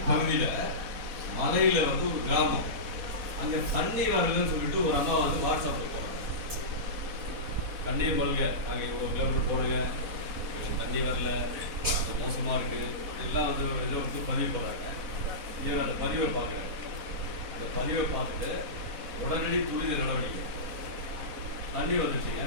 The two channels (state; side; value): late; left; 4.1 ms